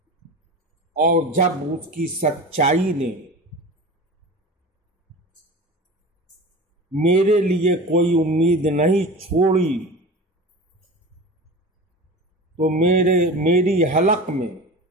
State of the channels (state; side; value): normal; both; correlation 0.33